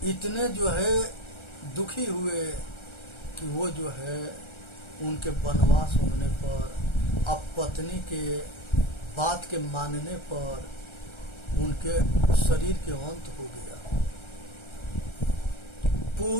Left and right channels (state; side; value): late; right; 1.3 ms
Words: इतने जो है दुखी हुए कि वो जो है उनके वनवास होने पर, अब पत्नी के बात के मानने पर उनके शरीर के अंत हो गया।